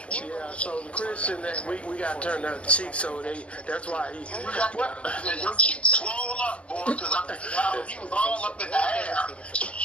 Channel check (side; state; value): right; late; 0.061 ms